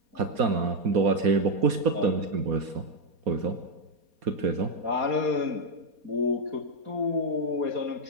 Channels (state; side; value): late; left; 4.2 ms